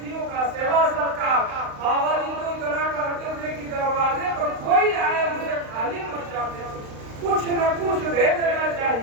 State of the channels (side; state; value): left; late; 35 ms